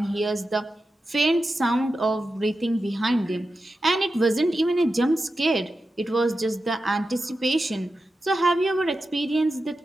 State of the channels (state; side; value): normal; both; correlation 0.91